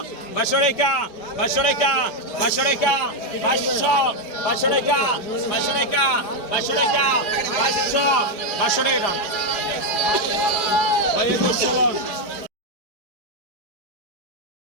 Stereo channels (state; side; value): late; right; 4.8 ms